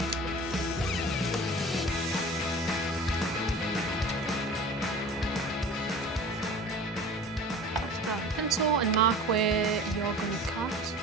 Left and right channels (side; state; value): both; normal; correlation 0.40